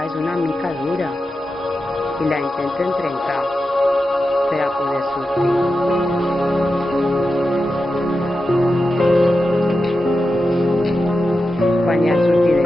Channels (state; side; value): normal; both; correlation 0.90